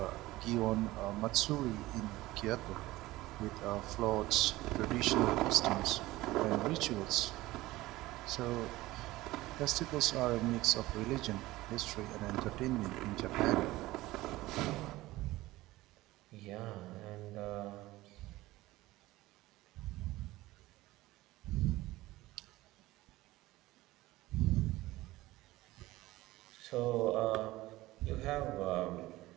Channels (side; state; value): left; quieter; 18.1 dB